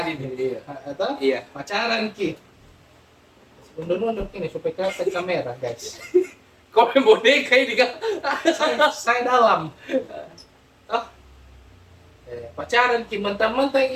ada ini. Iya. atau Iya. pacaran ki. Mundur-mundur ini supaya kelihatan kamera guys. Kau main boneka ini kan? saya dalam. Oh, pacaran ki mentang-mentang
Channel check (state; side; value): identical; both; correlation 1.00